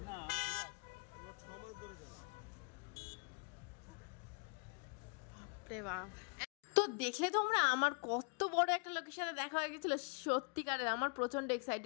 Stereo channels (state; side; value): quieter; right; 36.6 dB